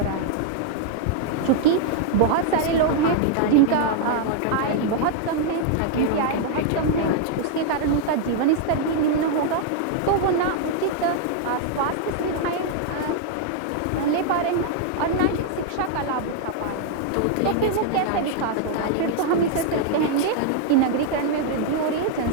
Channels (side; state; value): both; different; correlation 0.00